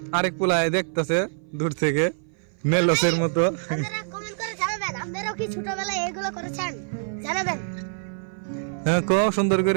আরেক পোলায় দেখতেছে দূর থেকে মেলসের মতো। আপনারা কমেন্ট করে জানাবেন আপনারাও কি ছোটবেলায় এগুলো করেছেন, জানাবেন। হ্যাঁ, কো সুন্দর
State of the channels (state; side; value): silent; left; 57 dB below the other